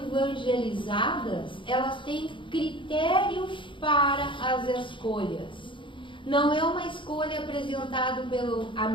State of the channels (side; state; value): right; late; 0.24 ms